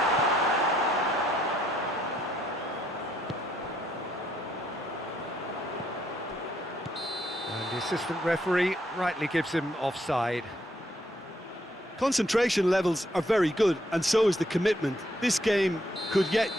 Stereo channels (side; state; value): both; normal; correlation 0.72